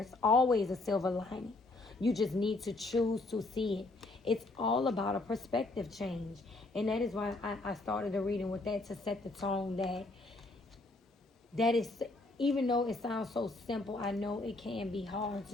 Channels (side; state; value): right; quieter; 3.1 dB